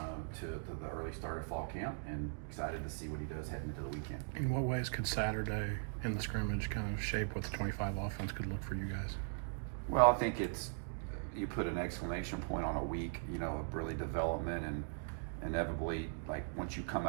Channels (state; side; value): silent; left; digital silence